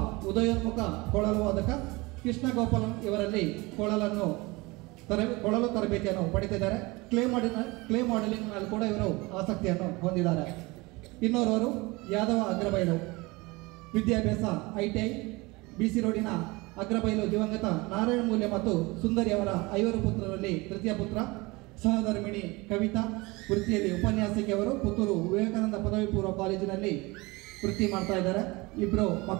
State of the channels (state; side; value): quieter; left; 23.7 dB